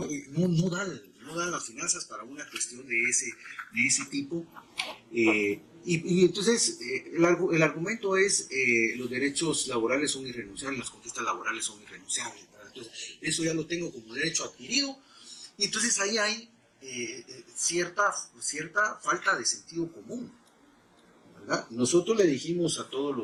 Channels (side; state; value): both; identical; correlation 1.00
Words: no dan las finanzas para una cuestión de ese tipo. Y entonces el argumento es los derechos laborales son irrenunciables, las conquistas laborales son irrenunciables, ¿verdad? Entonces eso ya lo tengo como derecho adquirido, y entonces ahí hay cierta falta de sentido común, ¿verdad? Nosotros le dijimos a todos